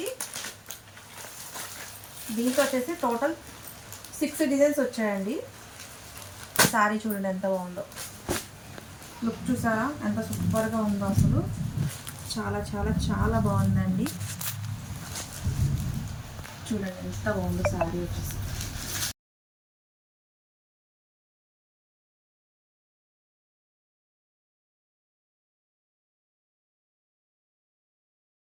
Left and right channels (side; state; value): both; identical; correlation 1.00